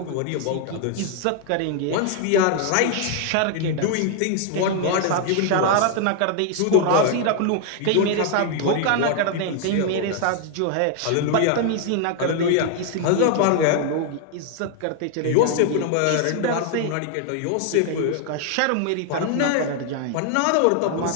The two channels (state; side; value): different; both; correlation 0.00